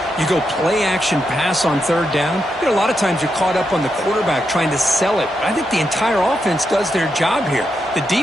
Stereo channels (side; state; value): both; normal; correlation 0.84